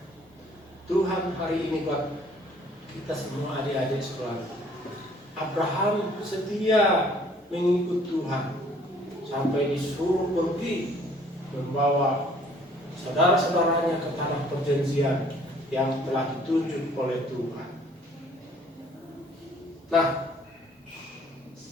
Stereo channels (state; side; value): normal; both; correlation 0.58